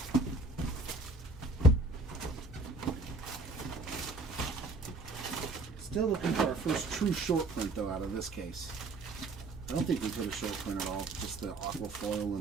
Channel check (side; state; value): left; quieter; 3.2 dB